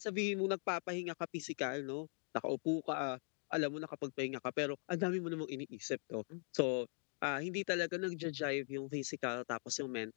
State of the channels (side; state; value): right; silent; 50 dB below the other